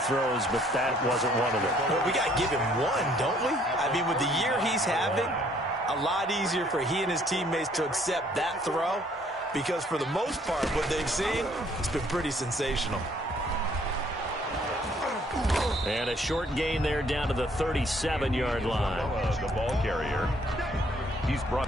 throws, but that wasn't one of them. Well, we got to give him one, don't we? I mean, with the year he's having, a lot easier for he and his teammates to accept that throw, because for the most part, what they've seen, it's been pretty sensational. And a short gain there down to the 37-yard line. The ball carrier. He's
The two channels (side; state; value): both; normal; correlation 0.63